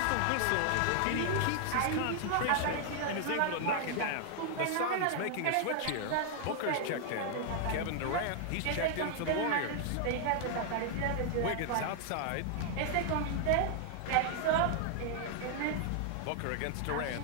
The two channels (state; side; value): different; both; correlation 0.00